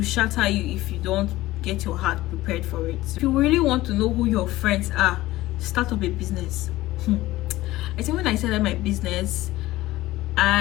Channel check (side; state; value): right; quieter; 17.1 dB